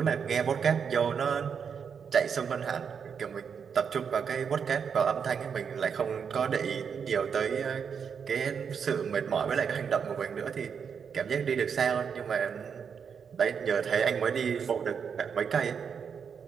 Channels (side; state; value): left; quieter; 6.8 dB